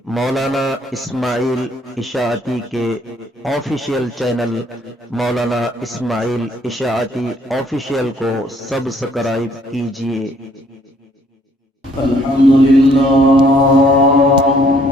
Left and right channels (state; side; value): normal; both; correlation 0.63